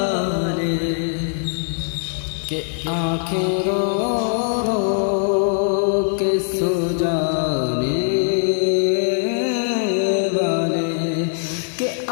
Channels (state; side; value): silent; right; 58 dB below the other